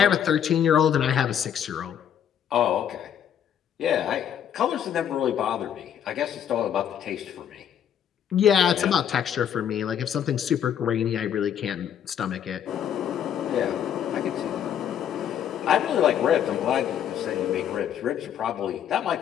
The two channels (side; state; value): right; quieter; 9.2 dB